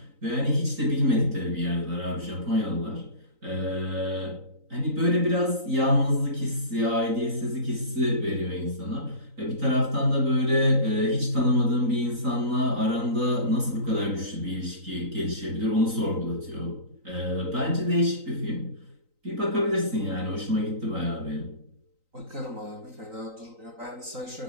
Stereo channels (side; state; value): left; late; 3.9 ms